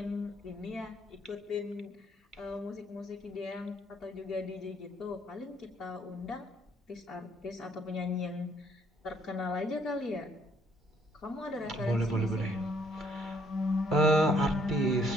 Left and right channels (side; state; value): both; normal; correlation 0.65